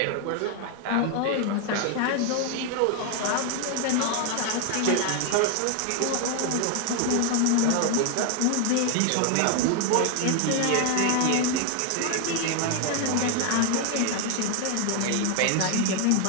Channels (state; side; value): different; both; correlation 0.01